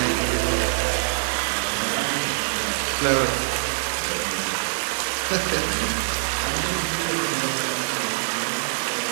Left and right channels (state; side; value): silent; left; 60 dB below the other